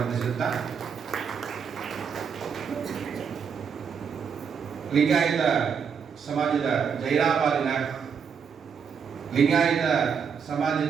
ಲಿಂಗಾಯತ ಸಮಾಜದ ಜೈರಾಬಾದಿನ ಲಿಂಗಾಯತ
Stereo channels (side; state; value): left; quieter; 6.6 dB